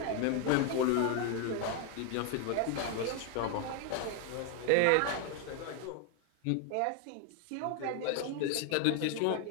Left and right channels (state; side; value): different; both; correlation 0.01